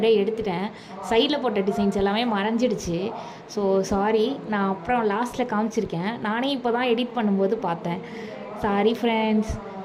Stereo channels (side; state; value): both; identical; correlation 1.00